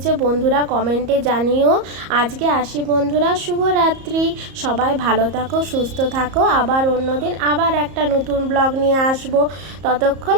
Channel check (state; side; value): late; left; 34 ms